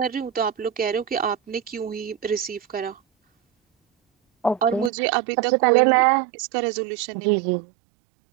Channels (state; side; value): drops out; left; at 4.9 s